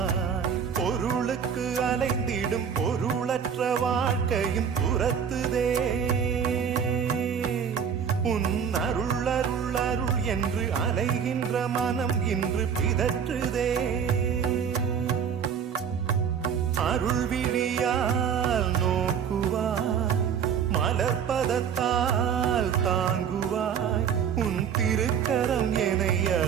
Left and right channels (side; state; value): left; quieter; 7.6 dB